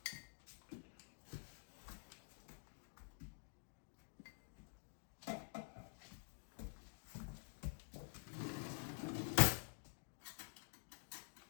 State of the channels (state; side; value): silent; right; digital silence